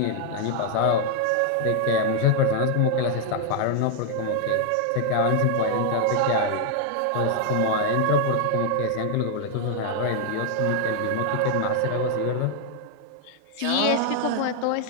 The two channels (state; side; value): different; both; correlation 0.00